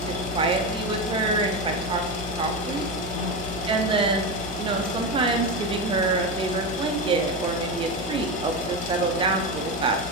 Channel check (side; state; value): both; normal; correlation 0.17